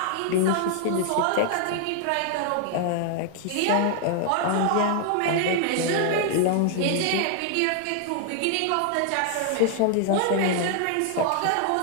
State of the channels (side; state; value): both; different; correlation 0.00